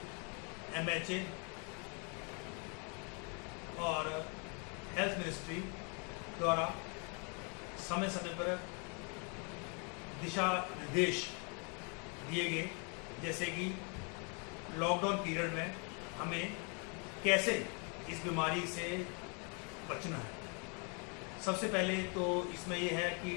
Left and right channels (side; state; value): right; quieter; 36.0 dB